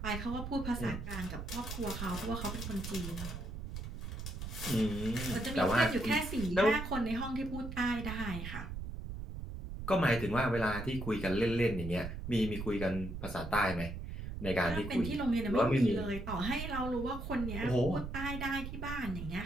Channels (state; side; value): noise; right; rumble, 7 dB below the sound